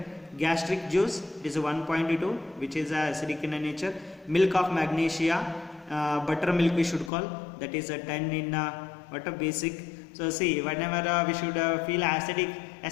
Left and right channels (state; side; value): drops out; right; at 7.1 s